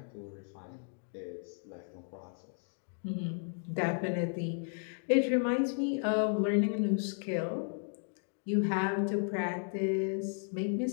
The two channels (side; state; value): right; silent; 55 dB below the other